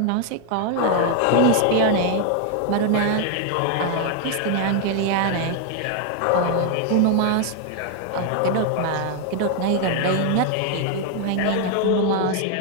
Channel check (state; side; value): different; both; correlation 0.01